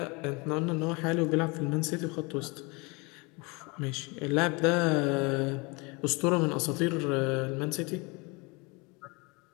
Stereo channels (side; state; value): right; quieter; 27.9 dB